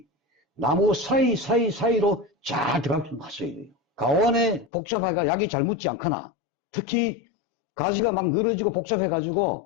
나무 사이로 잘 들어가게 좀 하셔야 돼요. 가원에 복잡해가 약이 잘 묻지 않거나, 특히 가지가 막 늘어지고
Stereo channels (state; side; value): drops out; right; at 4.7 s